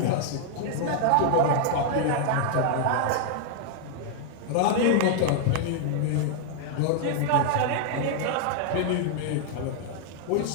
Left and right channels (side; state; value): both; different; correlation 0.00